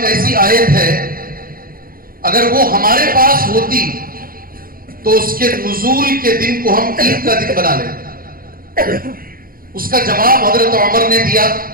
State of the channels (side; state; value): left; late; 0.42 ms